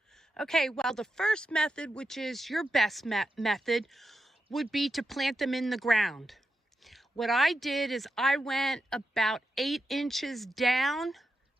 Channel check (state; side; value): normal; both; correlation 0.88